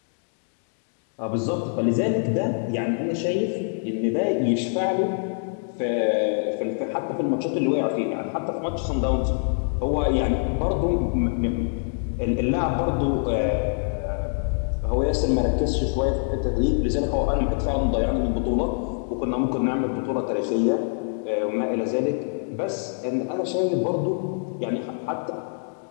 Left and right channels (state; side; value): silent; right; digital silence